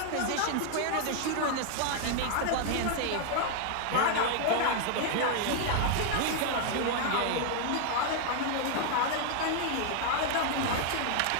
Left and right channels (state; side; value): different; both; correlation 0.00